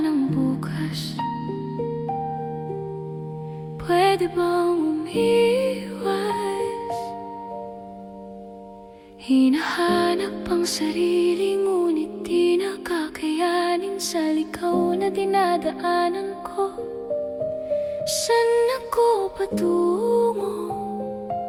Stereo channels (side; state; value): both; identical; correlation 1.00